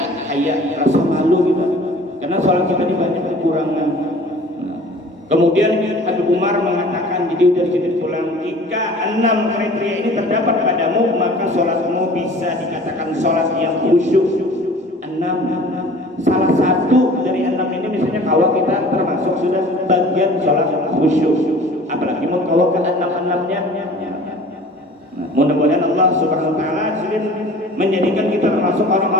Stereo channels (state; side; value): normal; both; correlation 0.46